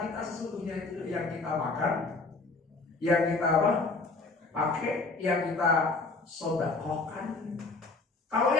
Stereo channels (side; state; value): right; quieter; 3.6 dB